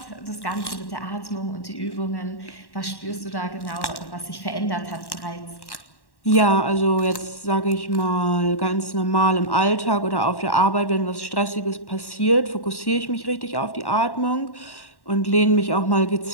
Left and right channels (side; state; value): right; late; 1.1 ms